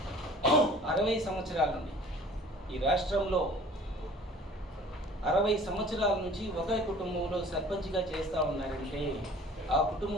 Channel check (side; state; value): both; normal; correlation 0.48